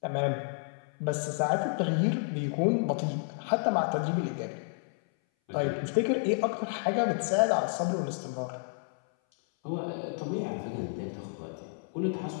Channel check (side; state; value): right; silent; 57 dB below the other